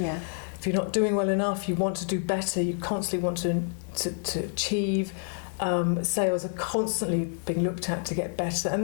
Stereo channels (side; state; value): right; silent; 59 dB below the other